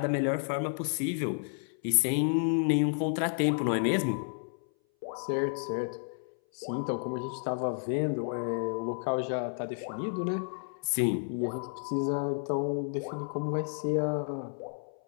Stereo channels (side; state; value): right; silent; 57 dB below the other